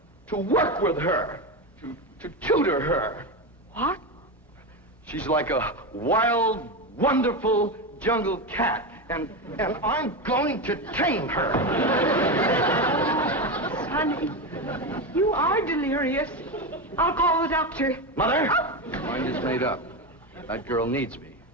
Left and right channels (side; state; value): both; normal; correlation 0.16